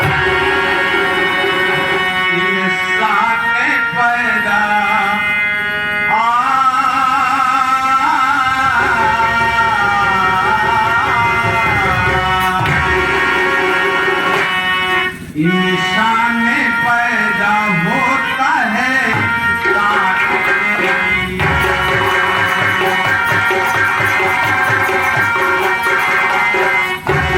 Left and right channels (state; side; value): identical; both; correlation 1.00